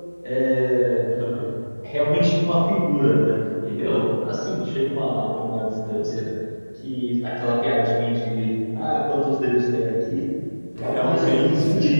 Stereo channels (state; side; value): inverted; both; correlation -1.00